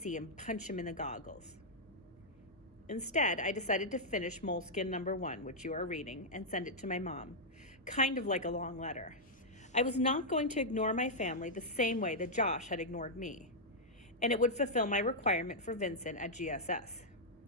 and punch him in the goggles. Instead, I decided to finish Moleskin number 1, which you are reading, and send it to my mom, kind of like a long letter. I was not going to ignore my family the same way that Josh had ignored me, and it would fulfill my requirement for Vincent at GSS.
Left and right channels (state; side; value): normal; both; correlation -0.07